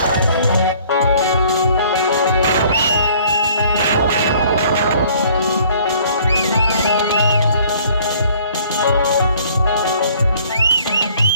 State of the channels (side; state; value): both; inverted; correlation -0.56